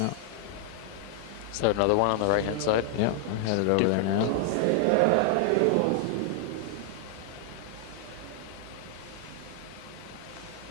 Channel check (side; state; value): both; different; correlation 0.00